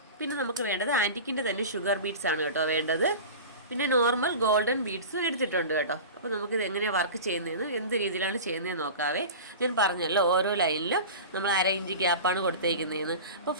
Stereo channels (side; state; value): both; inverted; correlation -0.33